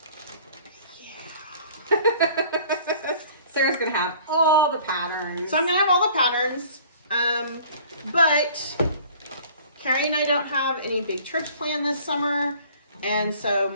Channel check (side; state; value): both; inverted; correlation -0.50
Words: Sarah's going to have all the patterns. So I'm going to have all the patterns. But Carrie and I don't have any big trips planned this summer. And so